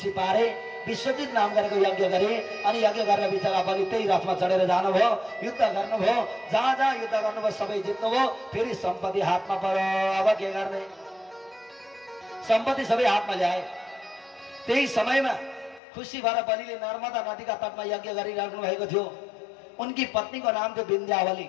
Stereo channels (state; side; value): drops out; right; at 15.8 s